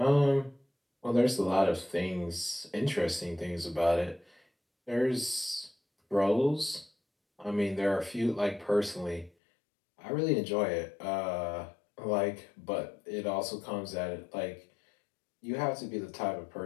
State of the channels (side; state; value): right; drops out; at 9.3 s